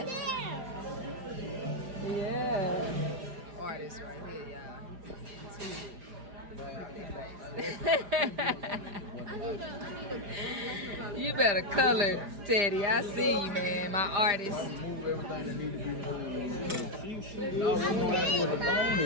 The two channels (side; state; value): left; late; 4.9 ms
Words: Yeah. Artist right here, y'all. You better color, Teddy. I see you, man. My artist. Oh, we know what the phone